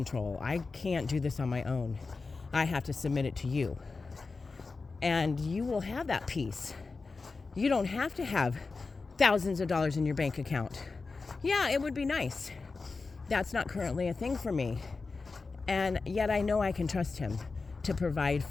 I can't do this on my own. I have to submit it to you. And you will have that peace. You don't have to have thousands of dollars in your bank account. Yeah, it would be nice. That's not currently a thing for me. And yet I know I can trust Him to provide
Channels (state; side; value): quieter; right; 4.1 dB